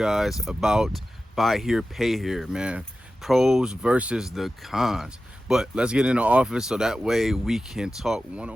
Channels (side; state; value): both; normal; correlation 0.94